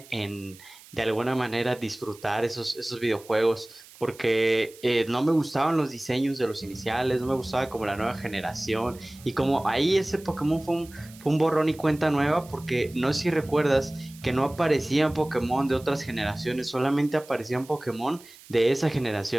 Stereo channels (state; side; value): noise; right; hiss, 22 dB below the sound